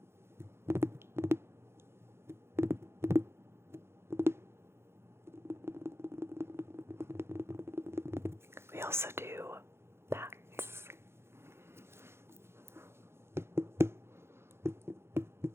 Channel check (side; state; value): left; late; 0.12 ms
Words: We also do bats.